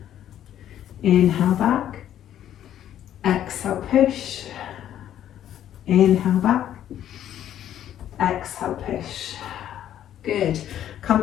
Inhale back. Exhale, push. Inhale back. Exhale, push. Good. Come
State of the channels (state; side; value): quieter; right; 11.1 dB